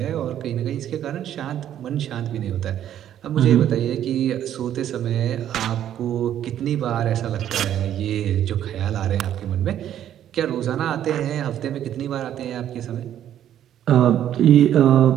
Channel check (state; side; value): quieter; left; 10.9 dB